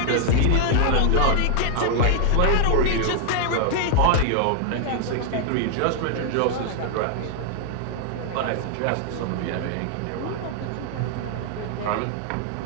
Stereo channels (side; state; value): both; different; correlation 0.00